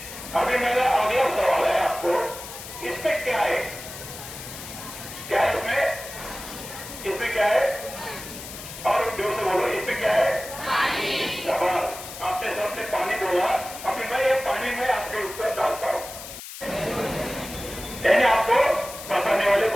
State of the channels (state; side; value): noise; left; hiss, 12 dB below the sound